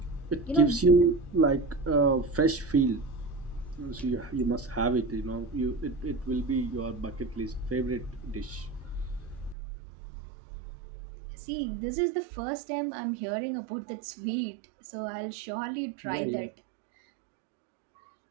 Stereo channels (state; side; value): drops out; left; at 9.6 s